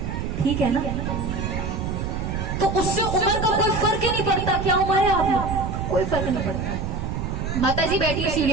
ठीक है ना, तो उससे उम्र का कोई फर्क ही नहीं पड़ता। क्या उम्र है आप, कोई फर्क नहीं पड़ता। माता जी बैठी है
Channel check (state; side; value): noise; right; rumble, 3 dB below the sound